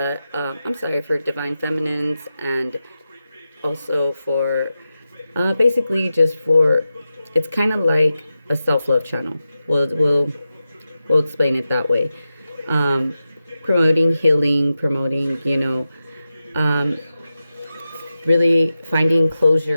for Divine Feminines, and also for, basically just for, it's kind of like a self-love channel. We'll explain it that way. Promoting healing, promoting, really finding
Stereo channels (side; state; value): both; inverted; correlation -0.92